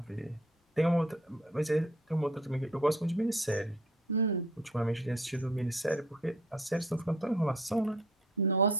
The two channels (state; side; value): normal; both; correlation 0.54